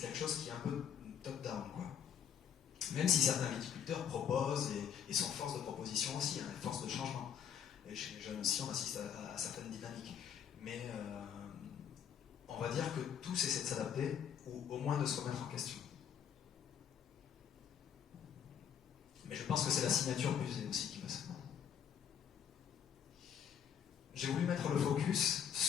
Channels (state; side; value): quieter; right; 8.5 dB